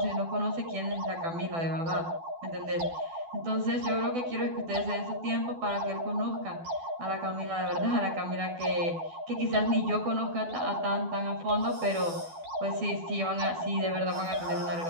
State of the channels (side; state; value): left; late; 12 ms